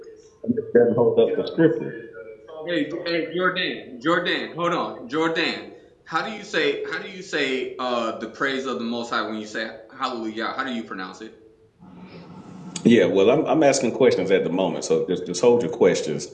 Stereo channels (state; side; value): identical; both; correlation 1.00